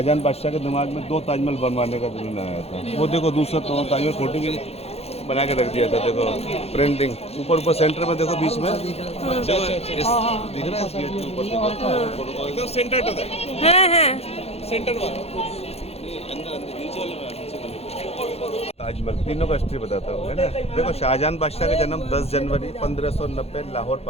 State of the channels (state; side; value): late; right; 0.30 ms